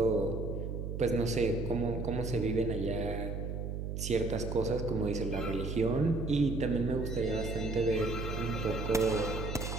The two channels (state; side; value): noise; right; hum, 4 dB below the sound